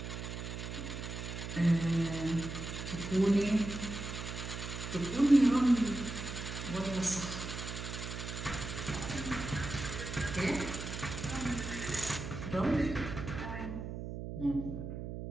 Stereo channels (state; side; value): noise; right; hum, 6 dB below the sound